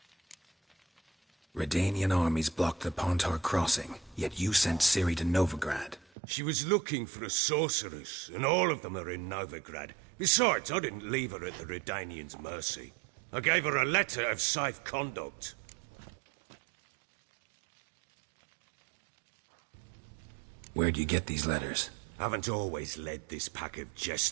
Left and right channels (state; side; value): drops out; left; at 6.1 s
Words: Redanian armies blocked the Pontar crossing, yet you sent Ciri to Novigrad. She was looking for a sorceress, and all of them are in Novigrad. Besides, I didn't leave her at the Redanians' mercy. I gave her a letter of safe conduct. Where'd you get these letters? Haven't always led this pack of